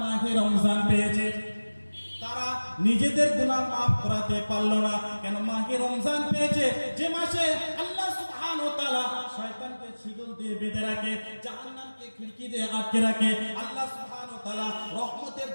মাহে রমজান পেয়েছে তারা নিজেদের গুনাহ মাফ করাতে পারলো না। কেন? মাহে রমজান পেয়েছে, যে মাসে আল্লাহ সুবহানাহু ওয়া তাআলা শয়তানকে শিকল দিয়ে বেঁধে রাখে, জাহান্নামকে খিড়কি দিয়ে আটকে রাখে, আল্লাহ সুবহানাহু ওয়া তাআলা রহমতের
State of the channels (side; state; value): both; inverted; correlation -1.00